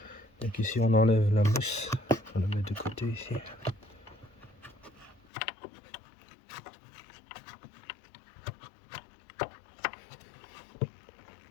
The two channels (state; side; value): drops out; right; at 5.2 s